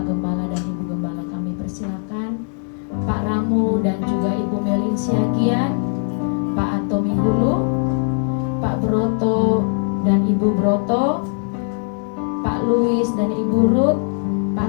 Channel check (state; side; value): silent; right; 55 dB below the other